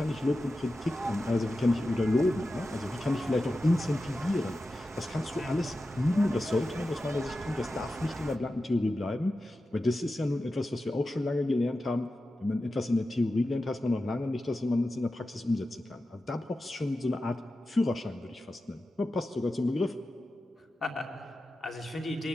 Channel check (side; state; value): both; normal; correlation 0.92